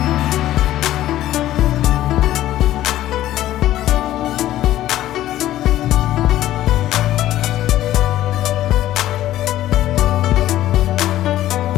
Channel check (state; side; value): quieter; right; 13.9 dB